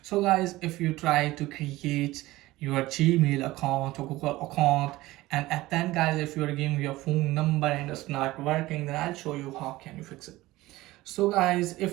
So guys, if you try to create your Gmail account or Google account, and at then guys, if you are giving your phone number and it's not working, then I'll show you how can you fix it. So guys,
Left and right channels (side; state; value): left; quieter; 18.2 dB